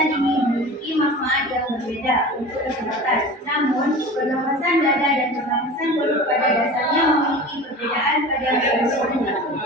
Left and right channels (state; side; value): normal; both; correlation 0.36